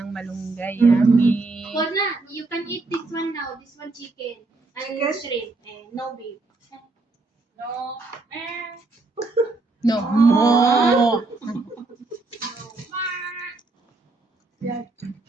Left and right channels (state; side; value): quieter; left; 3.4 dB